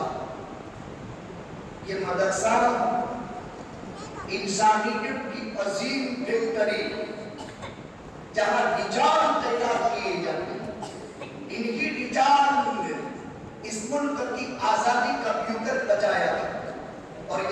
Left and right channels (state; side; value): identical; both; correlation 1.00